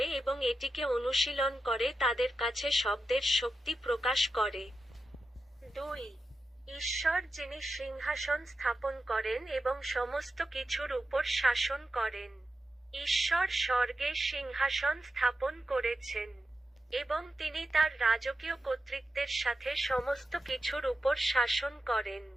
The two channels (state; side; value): normal; both; correlation 0.91